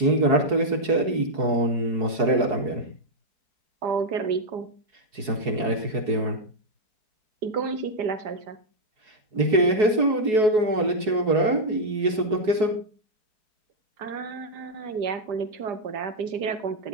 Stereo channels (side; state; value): left; late; 4.7 ms